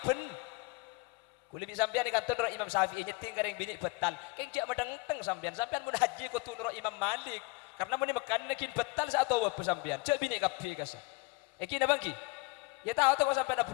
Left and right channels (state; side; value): quieter; right; 25.6 dB